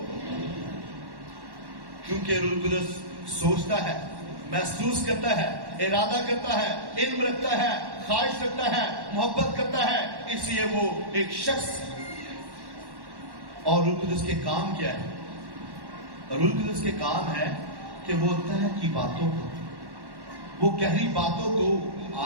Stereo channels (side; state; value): left; late; 1.1 ms